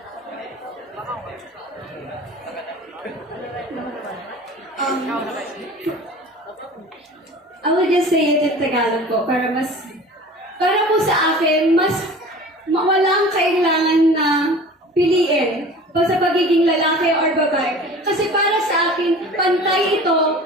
I will just say it in Tagalog po para po sa akin walang kailangan na piliin pa sa pagiging lalaki or babae. Kasi para sa akin, pantay ito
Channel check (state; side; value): normal; both; correlation 0.41